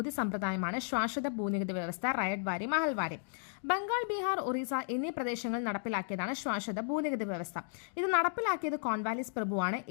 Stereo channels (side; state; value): right; silent; digital silence